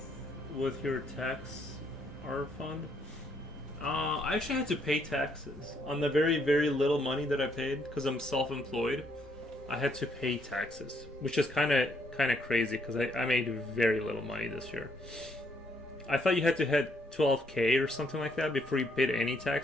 your tax R fund? I actually had to pay taxes on the very, very little money that I paid because I'm self-employed. I had to pay taxes, which is kind of crazy because I made very little money this year. I thought you had to hit 12K or something like that before you paid any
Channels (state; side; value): normal; both; correlation 0.70